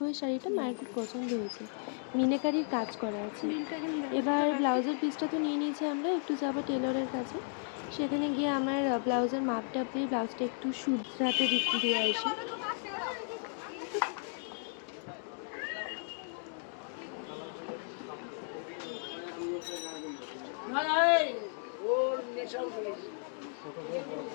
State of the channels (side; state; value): right; silent; 55 dB below the other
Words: এই শাড়িটা মায়ের খুব পছন্দ হয়েছে, মিনাকারির কাজ করা আছে। এবার ব্লাউজের পিসটা তো নিয়ে নিয়েছি, আমরা একটু যাবো টেলরের কাছে। সেখানে গিয়ে আমার ব্লাউজের মাপটাপ দিয়ে ব্লাউজটা একটু শুধরাতে দিয়ে আসি।